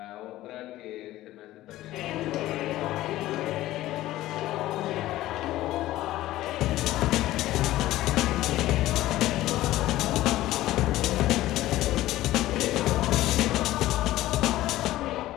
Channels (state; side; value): quieter; right; 15.6 dB